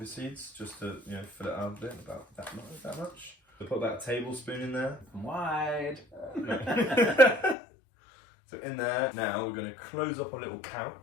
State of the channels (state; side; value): drops out; right; at 7.6 s